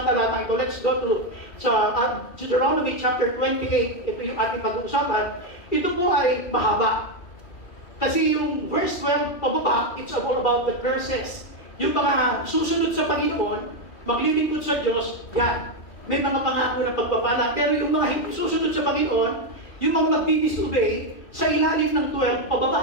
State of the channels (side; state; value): right; late; 2.8 ms